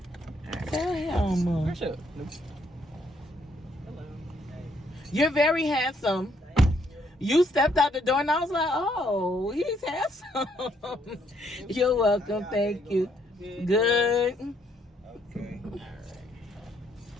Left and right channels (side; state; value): both; normal; correlation 0.70